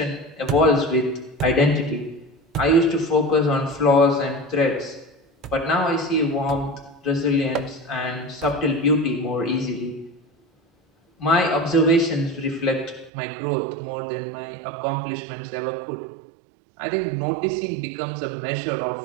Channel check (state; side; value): drops out; left; at 13.1 s